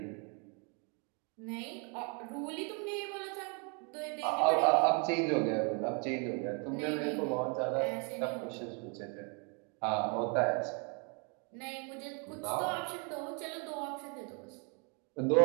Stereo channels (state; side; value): quieter; left; 35.9 dB